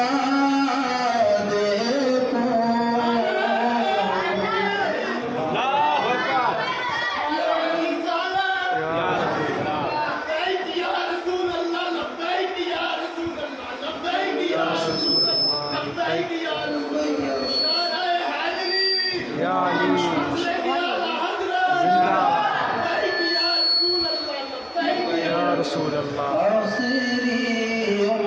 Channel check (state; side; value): identical; both; correlation 1.00